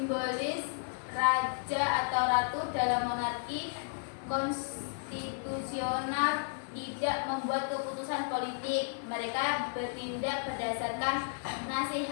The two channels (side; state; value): right; silent; digital silence